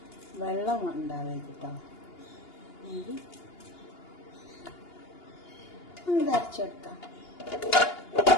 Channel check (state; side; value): late; right; 2.8 ms